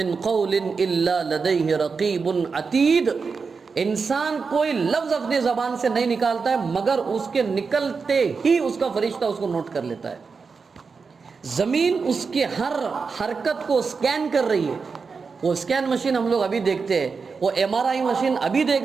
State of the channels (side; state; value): left; quieter; 5.0 dB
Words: قول الا لدیہ رقیب عتید، انسان کوئی لفظ اپنی زبان سے نہیں نکالتا ہے مگر اس کے نکلتے ہی اس کا فرشتہ اس کو نوٹ کر لیتا ہے۔ زمین اس کے ہر حرکت کو سکین کر رہی ہے، وہ سکین مشین ہم لوگ ابھی دیکھتے ہیں، وہ MRI مشین ابھی دیکھ